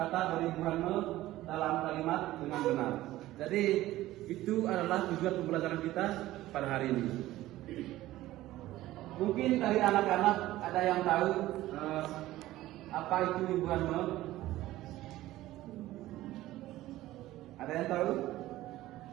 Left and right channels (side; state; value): left; quieter; 15.9 dB